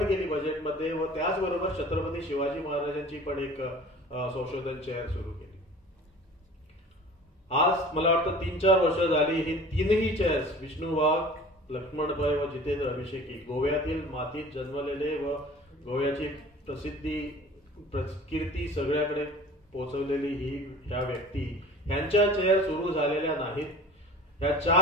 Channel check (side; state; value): both; normal; correlation 0.44